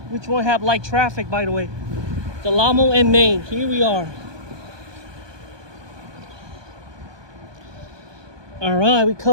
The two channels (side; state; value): left; late; 1.2 ms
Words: one have light traffic, by the way? Del Amo and Main. Here we are. All right, we